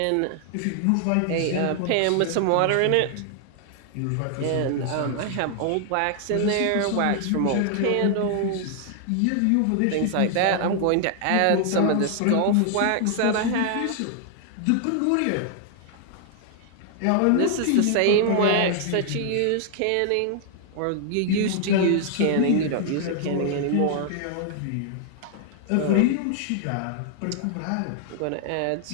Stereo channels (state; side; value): different; both; correlation 0.00